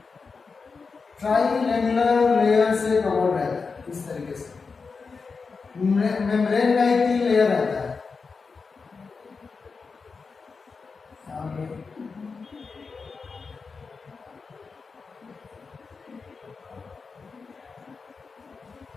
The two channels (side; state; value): right; quieter; 4.8 dB